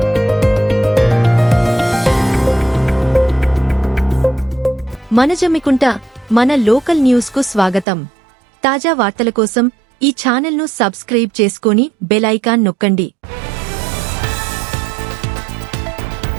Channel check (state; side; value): drops out; left; at 7.9 s